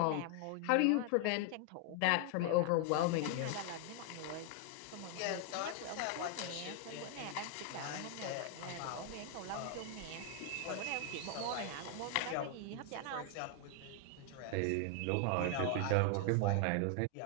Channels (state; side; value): different; both; correlation 0.00